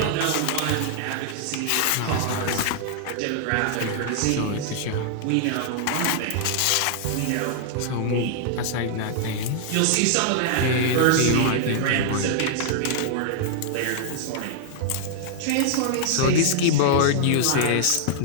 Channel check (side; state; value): both; different; correlation -0.01